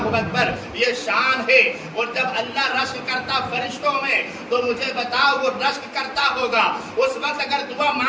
اکبر۔ یہ شان ہے۔ اور جب اللہ رشک کرتا فرشتوں میں تو مجھے بتاؤ وہ رشک کرتا ہوگا اس وقت اگر دعا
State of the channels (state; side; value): identical; both; correlation 1.00